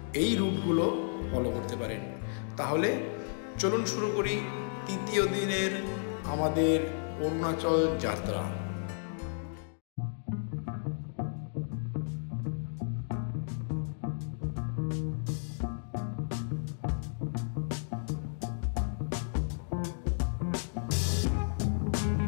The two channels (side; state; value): right; silent; digital silence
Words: এই রুটগুলো ফলো করতে পারেন। তাহলে চলুন শুরু করি তৃতীয় দিনের আমাদের অরুণাচল যাত্রা।